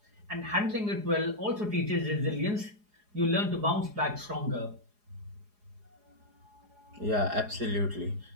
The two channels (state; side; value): late; left; 4.8 ms